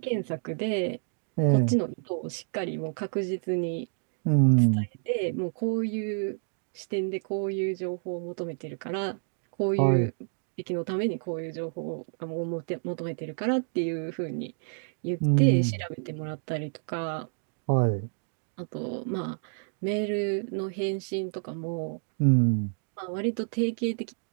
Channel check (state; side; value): silent; left; digital silence